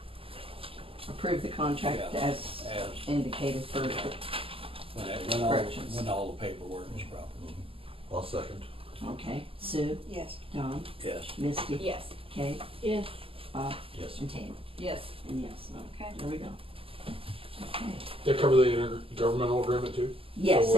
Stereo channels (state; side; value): late; left; 0.26 ms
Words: Approve the contract Yeah. as indicated for, Corrections. when all the paperwork is proper. I'll second. okay, Sue, Yes. John, Yes. Misty, Yes. Kate, Yes. Bob, Yes. and Tammy. Yes. And yes, Okay. there we go. Okay. They cover the intergovernmental agreement too? Yes, So